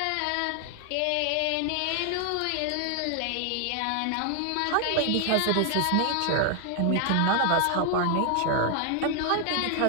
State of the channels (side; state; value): both; different; correlation 0.00